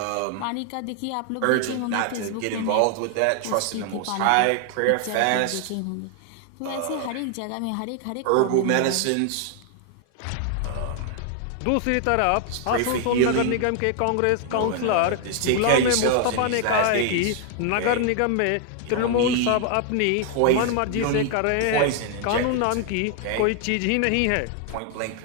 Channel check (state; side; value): different; both; correlation 0.00